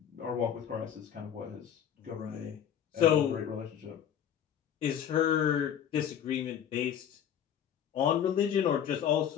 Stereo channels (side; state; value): right; quieter; 9.3 dB